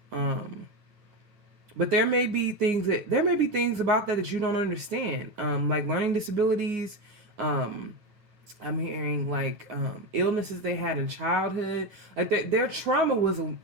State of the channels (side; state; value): left; late; 9.5 ms